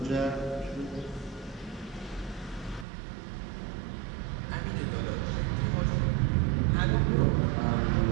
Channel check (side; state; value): left; drops out; at 2.9 s